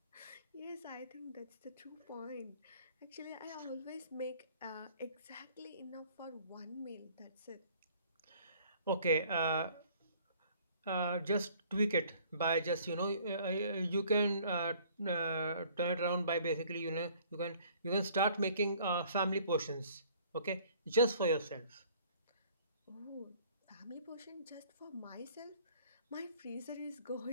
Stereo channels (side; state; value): both; inverted; correlation -0.55